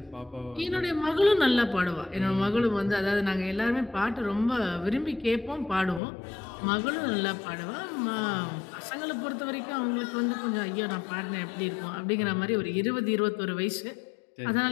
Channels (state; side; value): drops out; right; at 6.0 s